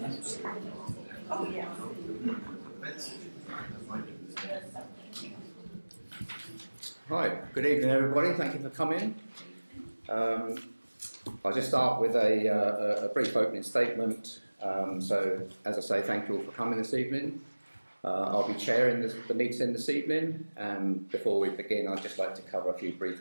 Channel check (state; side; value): inverted; both; correlation -1.00